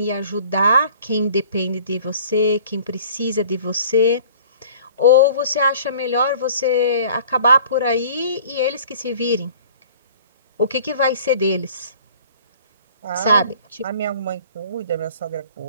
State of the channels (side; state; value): both; inverted; correlation -0.49